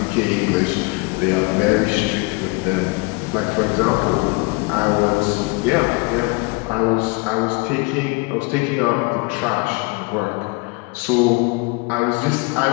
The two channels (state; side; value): quieter; right; 28.1 dB